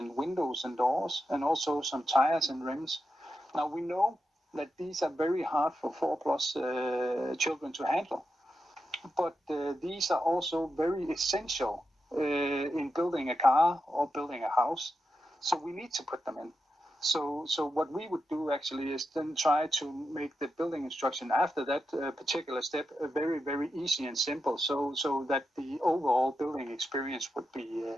windows and doors, and also some tires and rims. Now we know that these are very hard for 4+ children to handle, but these are also very essential in building a car or building a house. So we need to put them in. So what we would do actually is then try to make the building instruction after that particular step very, very easy and simple, so that the overall building experience would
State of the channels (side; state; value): both; normal; correlation 0.88